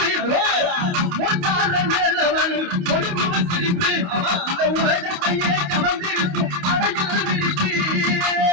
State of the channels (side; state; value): left; late; 28 ms